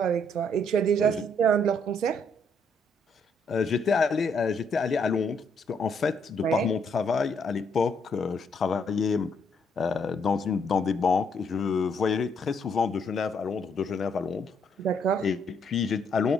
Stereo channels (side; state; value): both; normal; correlation 0.71